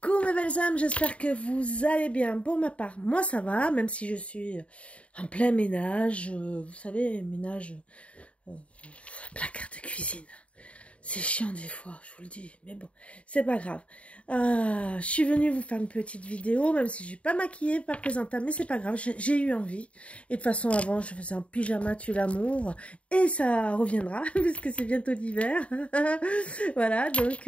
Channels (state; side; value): late; right; 0.063 ms